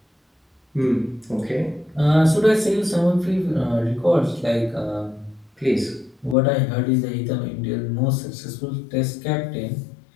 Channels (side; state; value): right; drops out; at 6.4 s